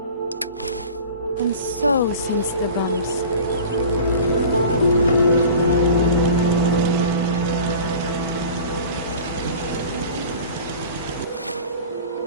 And so since the bombs.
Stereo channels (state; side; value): inverted; both; correlation -0.40